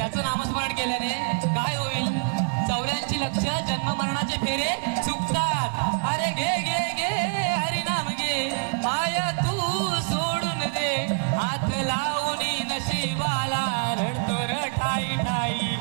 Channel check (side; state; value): left; quieter; 38.6 dB